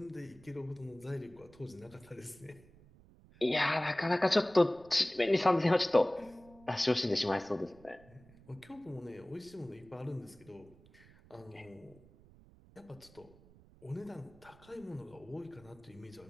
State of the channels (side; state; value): right; noise; rumble, 24 dB below the sound